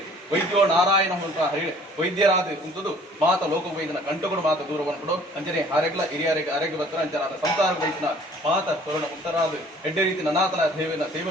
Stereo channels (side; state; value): both; normal; correlation 0.53